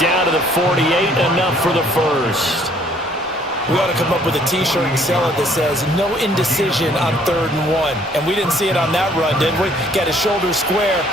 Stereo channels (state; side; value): normal; both; correlation 0.61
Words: to the 48, enough for the first. We ought to come up with a T-shirt and sell it that says, no indecision on 3rd and 1. And we didn't see it on that run, did we? Got his shoulders square,